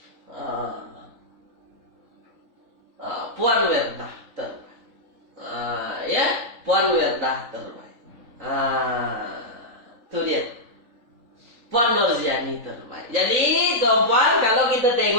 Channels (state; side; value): late; left; 3.7 ms